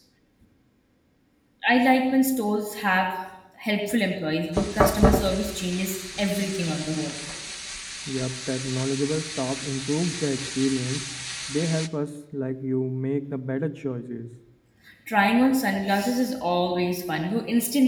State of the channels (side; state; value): both; identical; correlation 1.00